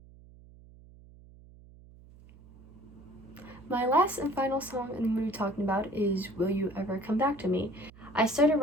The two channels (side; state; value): right; noise; hum, 22 dB below the sound